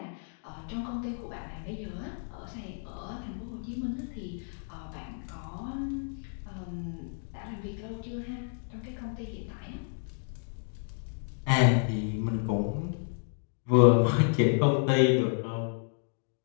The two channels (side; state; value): right; silent; digital silence